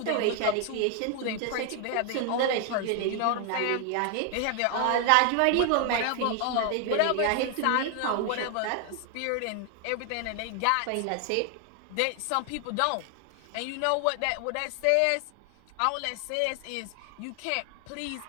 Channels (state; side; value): different; both; correlation 0.00